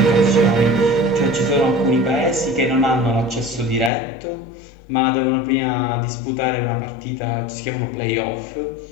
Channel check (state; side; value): drops out; right; at 3.9 s